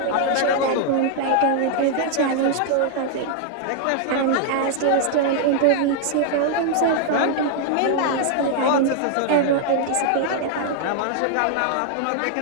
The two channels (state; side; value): different; both; correlation 0.00